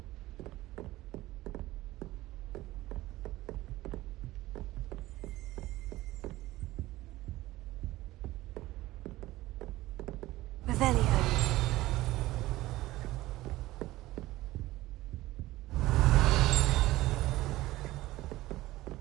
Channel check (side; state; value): left; quieter; 17.4 dB